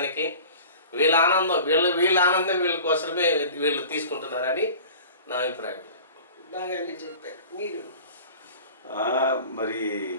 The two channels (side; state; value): both; inverted; correlation -0.41